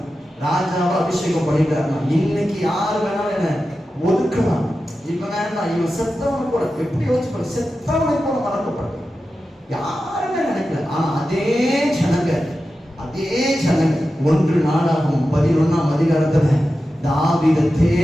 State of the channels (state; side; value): normal; both; correlation 0.92